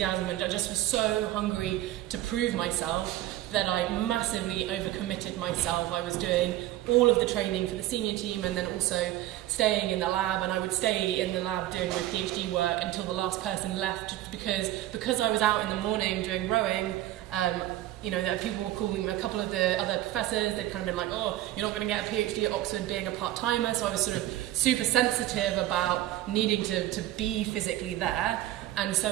and I just was so hungry to prove myself that I massively overcommitted myself. I was doing all of the training for the senior team and then also staying in the lab, and I would stay in the lab doing my PhD work until the last person left, because I was out in the morning doing rowing. People were calling, a couple of the other professors, they'd kind of been like, oh, you're not going to get a PhD at Oxford being a part-timer, so I was sort of super sensitive about needing to be physically there, and so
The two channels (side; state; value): left; quieter; 14.6 dB